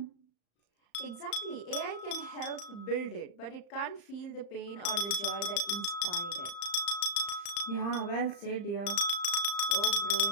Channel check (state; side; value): late; right; 35 ms